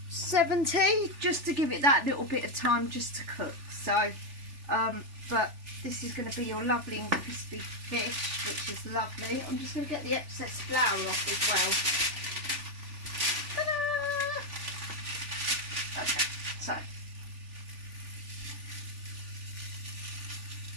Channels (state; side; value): late; left; 3.4 ms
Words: just to give it that little bit of time just to cook. So but this is going to be your lovely and crispy fish, which is lovely. I'm just going to get the excess flour off as well. Okay, so